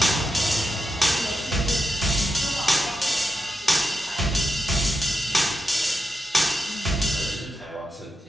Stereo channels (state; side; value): normal; both; correlation 0.87